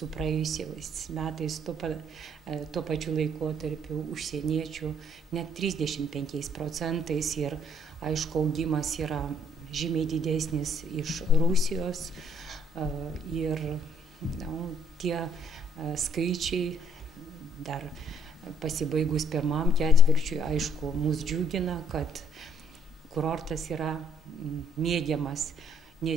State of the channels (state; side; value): normal; both; correlation 0.64